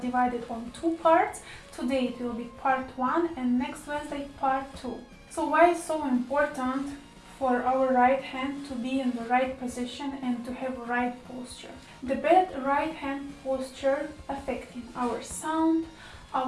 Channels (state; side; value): identical; both; correlation 1.00